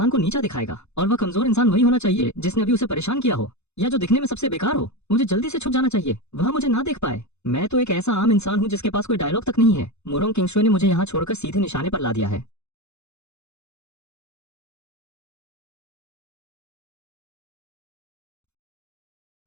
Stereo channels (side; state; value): right; late; 0.81 ms